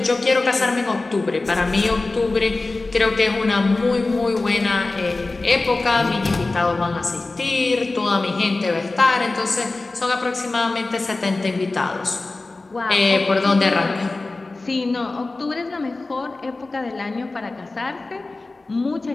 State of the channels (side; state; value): right; quieter; 3.3 dB